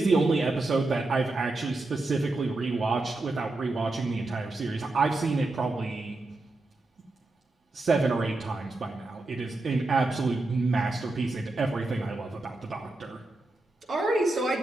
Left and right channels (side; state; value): left; quieter; 3.0 dB